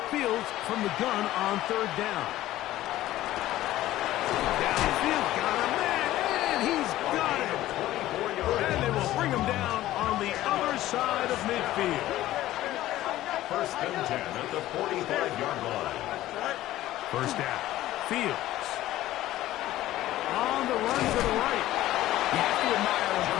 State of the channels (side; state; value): right; quieter; 15.0 dB